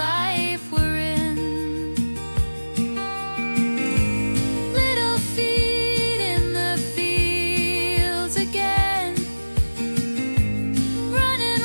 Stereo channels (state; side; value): inverted; both; correlation -1.00